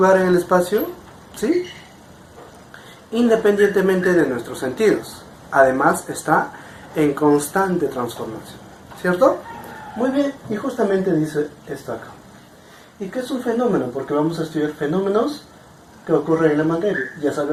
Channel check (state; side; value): identical; both; correlation 1.00